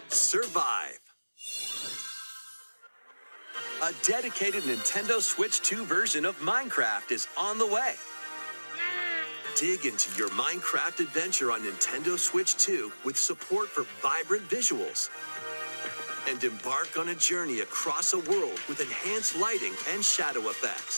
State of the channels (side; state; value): both; inverted; correlation -1.00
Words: survive. A dedicated Nintendo Switch 2 version of Minecraft is on the way. Dig into your Minecraft adventure on Nintendo Switch 2 with support for vibrant visuals. And embark on a journey across a world with enhanced lighting and shadow